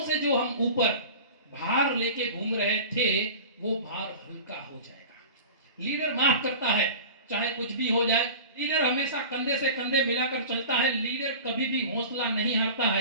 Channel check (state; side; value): inverted; both; correlation -0.35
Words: से जो हम ऊपर भार लेके घूम रहे थे वो भार हल्का हो जाएगा। लीडर माफ करता है, चाहे कुछ भी हो जाए। लीडर हमेशा कंधे से कंधे मिलाकर चलता है। लीडर कभी भी हौसला नहीं हारता